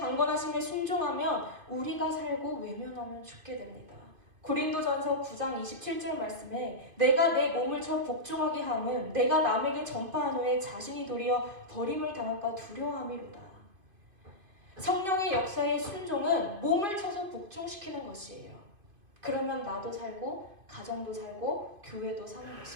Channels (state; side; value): late; left; 2.5 ms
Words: 순종하면 우리가 살고 외면하면 죽게 됩니다. 고린도전서 9장 27절 말씀에 내가 내 몸을 쳐 복종하게 함은 내가 남에게 전파한 후에 자신이 도리어 버림을 당할까 두려워함이로다. 성령의 역사의 순종은 몸을 쳐서 복종시키는 것이에요. 그러면 나도 살고 가정도 살고 교회도 사는